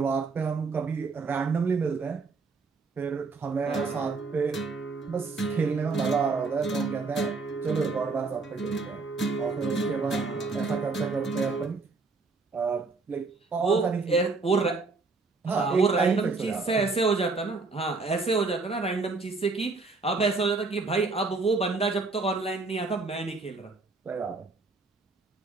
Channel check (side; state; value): left; quieter; 4.0 dB